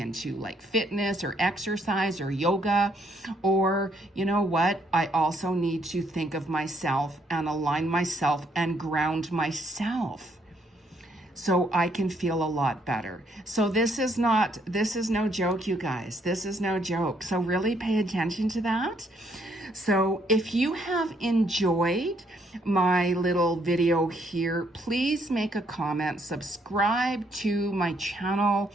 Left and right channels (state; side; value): normal; both; correlation 0.70